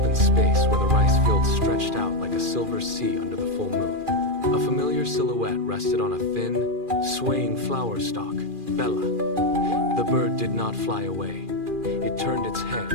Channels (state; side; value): late; left; 2.4 ms